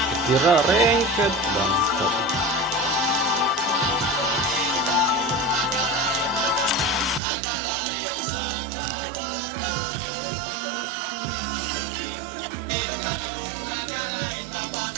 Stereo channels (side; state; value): left; drops out; at 7.2 s